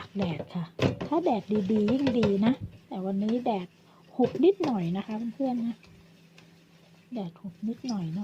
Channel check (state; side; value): identical; both; correlation 1.00